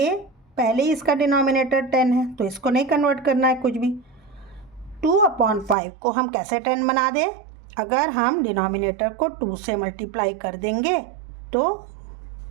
पहले ही इसका डिनोमिनेटर 10 है तो इसको नहीं कन्वर्ट करना है कुछ भी। 2/5 को हम कैसे 10 बना दें, अगर हम डिनोमिनेटर को 2 से मल्टीप्लाई कर देंगे तो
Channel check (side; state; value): left; drops out; at 5.8 s